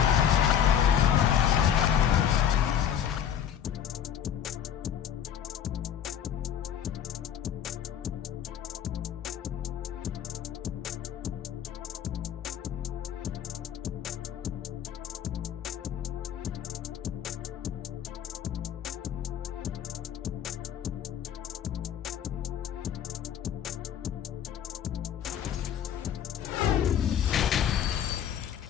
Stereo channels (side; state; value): right; quieter; 9.2 dB